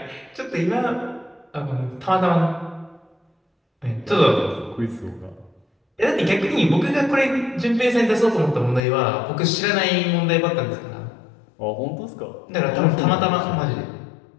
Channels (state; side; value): drops out; right; at 8.8 s